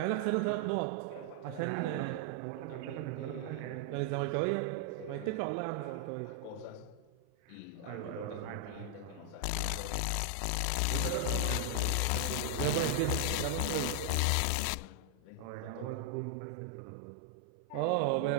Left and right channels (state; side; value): different; both; correlation 0.00